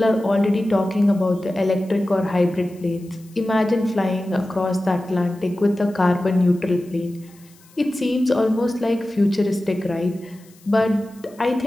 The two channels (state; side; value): noise; left; hiss, 28 dB below the sound